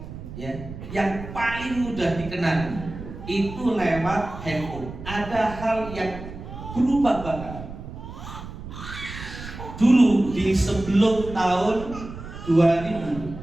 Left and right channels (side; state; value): right; noise; rumble, 11 dB below the sound